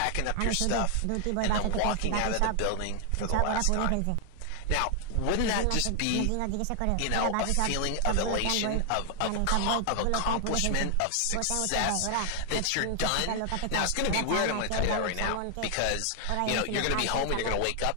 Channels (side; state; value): both; different; correlation 0.00